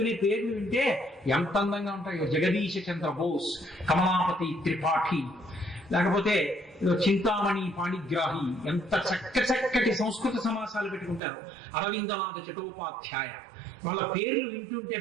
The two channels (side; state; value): left; drops out; at 11.2 s